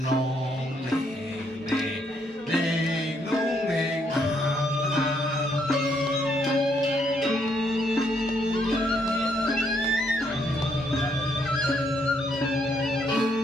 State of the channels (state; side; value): normal; both; correlation 0.73